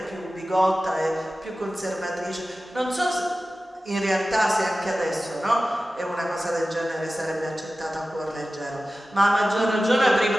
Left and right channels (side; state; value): both; normal; correlation 0.95